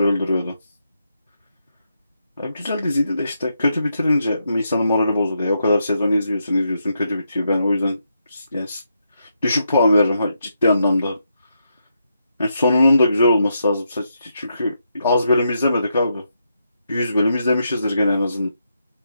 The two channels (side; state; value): both; inverted; correlation -0.81